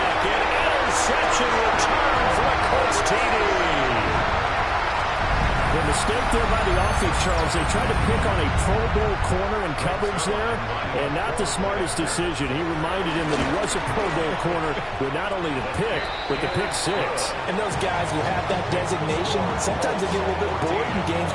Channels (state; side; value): identical; both; correlation 1.00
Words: An interception return for the Colts TD. The mistake there by the offense, Charles, they tried to pick on a Pro Bowl corner in coverage there, and not the smartest decision. He reminded him that he was a Pro Bowl corner with not only the pick, but the pick six. And those guys who have that designation, sometimes they get a little bit bored in games